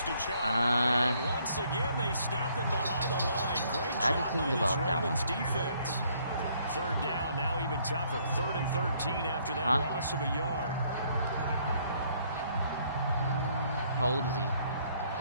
to Chubb. And once again, they stop him behind the line. Great job by this Ravens defense. 3rd down, now even tougher. 3rd and 13 after that loss of a yard. How old is he?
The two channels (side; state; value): both; inverted; correlation -0.66